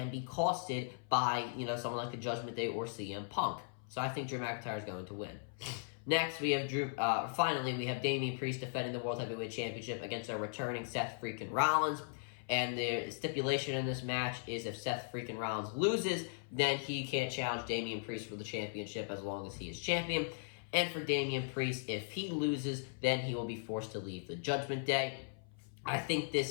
be costed by, someone like the Judgment Day or CM Punk. So I think Drew McIntyre is going to win. Next, we have finally, we have Damian Priest defending the World Heavyweight Championship against our returning Seth freaking Rollins. And the stipulation in this match is if Seth freaking Rollins loses, then he can't challenge Damian Priest for the championship as long as he is champion. And for Damian Priest, if he loses, then he will be forced to leave the Judgment Day. I think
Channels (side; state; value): right; silent; 53 dB below the other